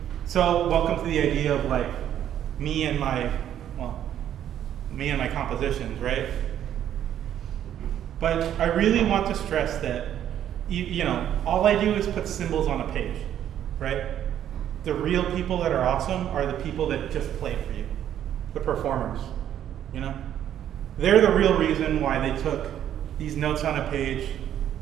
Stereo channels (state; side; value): quieter; left; 10.6 dB